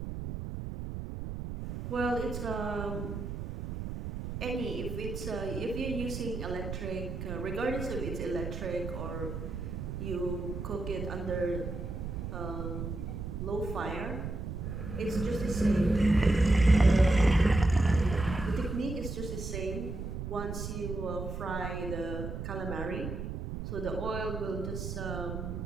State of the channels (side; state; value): right; noise; rumble, 5 dB below the sound